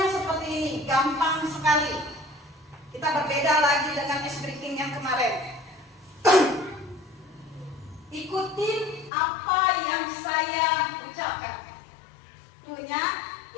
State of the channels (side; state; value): right; drops out; at 9.1 s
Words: seperti ini, gampang sekali. Kita berbeda lagi dengan ice breaking yang kemarin. Ikutin apa yang saya ucapkan. Krunya,